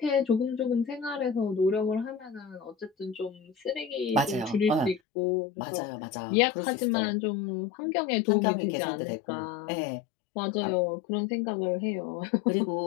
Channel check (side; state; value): right; drops out; at 5.0 s